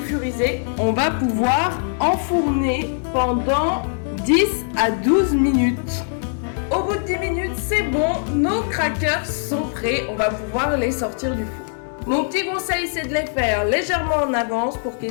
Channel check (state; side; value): silent; right; digital silence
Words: on va pouvoir enfourner pendant 10 à 12 minutes. Au bout de 10 minutes, c'est bon, nos crackers sont prêts, on va pouvoir les sortir du four. Mon petit conseil, c'est de les faire légèrement en avance pour